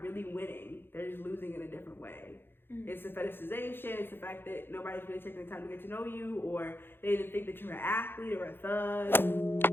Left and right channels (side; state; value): right; late; 0.10 ms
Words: really winning. They're just losing in a different way. It's the fetishization, it's the fact that nobody's really taking the time to get to know you, or they either think that you're an athlete or a thug.